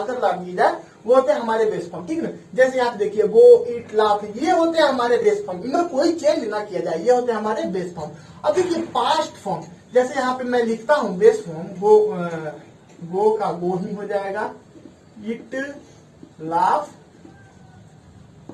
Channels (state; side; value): identical; both; correlation 1.00